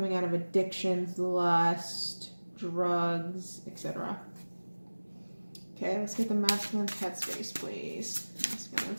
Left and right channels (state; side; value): inverted; both; correlation -1.00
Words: out of addictions, lust, drugs, etc. Okay, let's get the masculine's headspace, please.